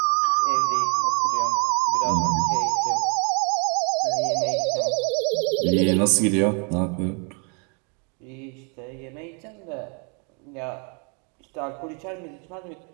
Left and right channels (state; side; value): quieter; left; 36.7 dB